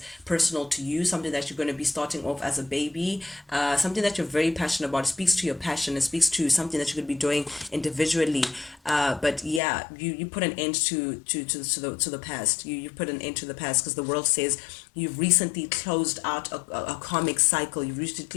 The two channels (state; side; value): drops out; right; at 9.6 s